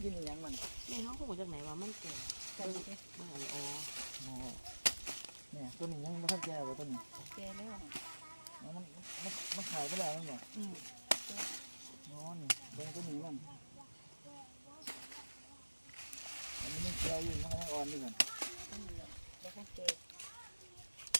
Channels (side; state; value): both; inverted; correlation -1.00